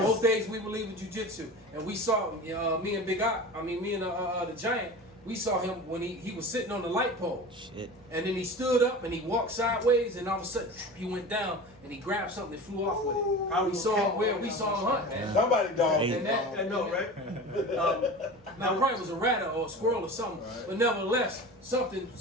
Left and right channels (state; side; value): normal; both; correlation 0.33